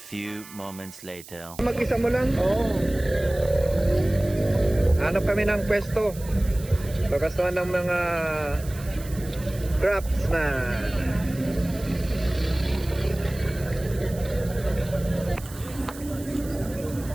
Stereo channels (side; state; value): right; noise; hiss, 17 dB below the sound